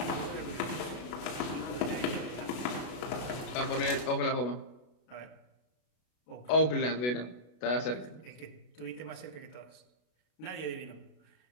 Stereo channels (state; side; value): late; right; 32 ms